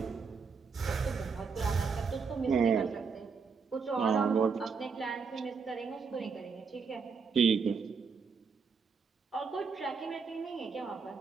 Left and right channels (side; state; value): left; quieter; 5.3 dB